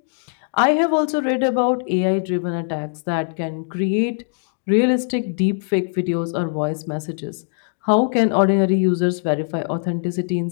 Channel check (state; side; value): silent; right; 65 dB below the other